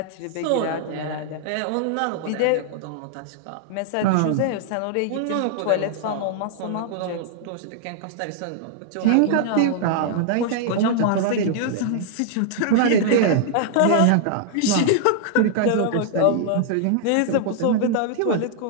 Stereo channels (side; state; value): both; different; correlation -0.01